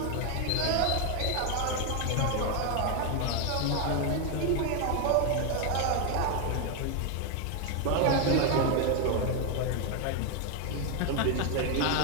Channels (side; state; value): both; different; correlation 0.01